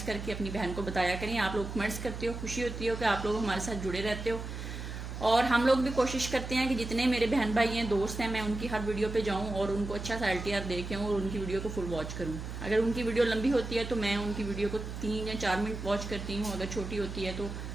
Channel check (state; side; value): noise; right; hum, 7 dB below the sound